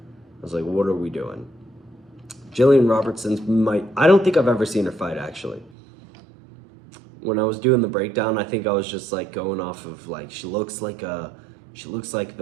was like, what are we doing? Jillian Robertson's I don't think I've ever seen her fight, actually. When I was doing the breakdown, I think I was just like going off of like, she looks like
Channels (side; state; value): left; drops out; at 5.7 s